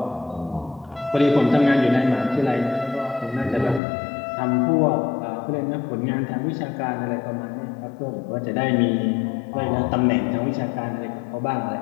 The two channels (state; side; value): drops out; right; at 3.8 s